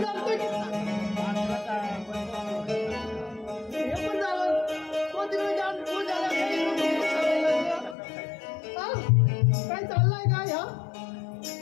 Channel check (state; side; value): drops out; right; at 8.0 s